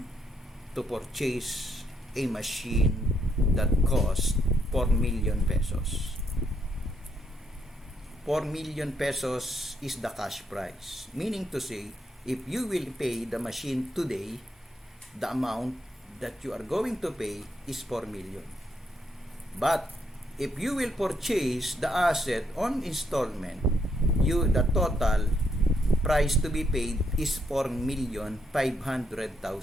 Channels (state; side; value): normal; both; correlation 0.75